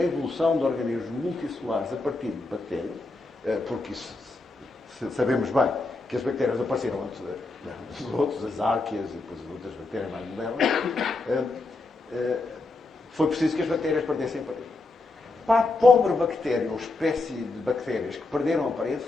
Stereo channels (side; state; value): right; quieter; 3.3 dB